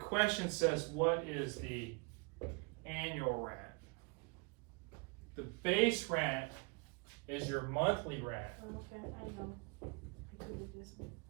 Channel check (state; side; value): quieter; left; 31.5 dB